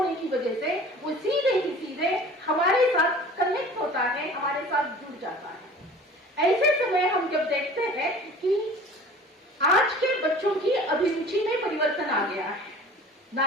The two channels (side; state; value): both; normal; correlation 0.44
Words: की वजह से वो सीधे ही सीधे हमारे साथ कनेक्ट होता है, हमारे साथ जुड़ जाता है। ऐसे समय हम जब देखते हैं कि आज के बच्चों की अभिरुचि में परिवर्तन आ गया है।